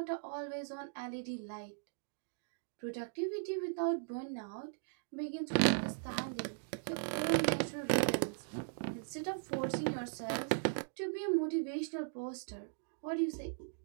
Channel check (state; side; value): silent; left; digital silence